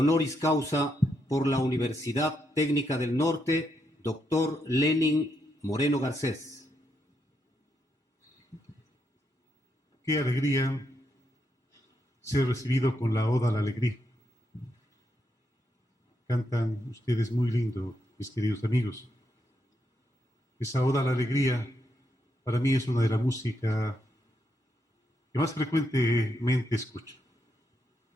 causa por la Universidad Técnica del Norte, doctor Lenin Moreno Garcés. Qué alegría ser recibido con la Oda a la Alegría. Cantan ustedes muy lindo, mis queridos amigos. Esa Oda a la Alegría para mí es una de la música que más frecuentemente escucho.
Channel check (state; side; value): normal; both; correlation 0.80